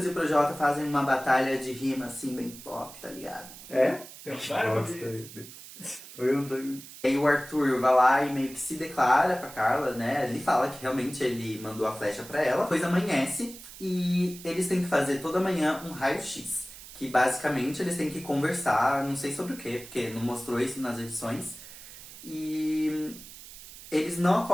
e o Projota fazem uma batalha de rima, assim, bem pop, tá ligado? É? E aí o Arthur vai lá e meio que se declara pra Carla, né? Ele fala que realmente ele mandou a flecha pra ela. Depois amanhece e eles têm que fazer toda manhã um raio-x. Que basicamente eles têm que conversar, não sei sobre o quê, porque não mostrou isso nas edições. E eles não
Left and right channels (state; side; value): noise; right; hiss, 16 dB below the sound